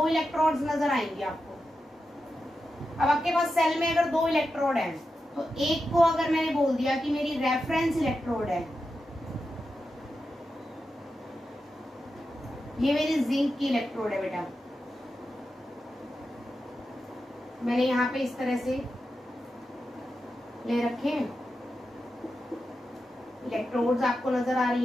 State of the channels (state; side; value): normal; both; correlation 0.90